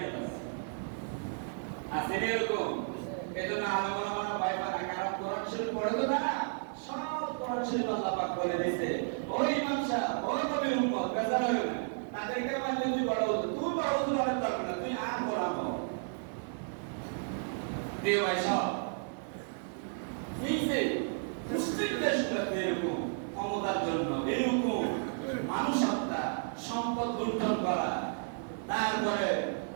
শরীফ পড়ে তো না, সব কোরআন শরীফ আল্লাহ পাক বলে দিয়েছে ওই ইমাম সাহেব ওই নবীর উম্মত বেজার হবে না, তাদেরকে মানলে তুই বড় হতো, তুই বড় হতো অনেক দরকার না, তুই আর কোরআন হও। প্রিয় ভাই সব এই যে মুসলিম দেশগুলোতে এরকম ক্ষমতার জন্য এরকম মানুষ হত্যা, সম্পদ লুণ্ঠন করা, তারপরে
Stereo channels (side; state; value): left; silent; 56 dB below the other